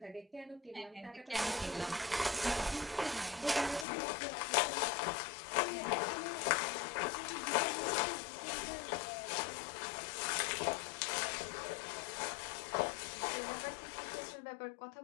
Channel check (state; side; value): drops out; right; at 3.9 s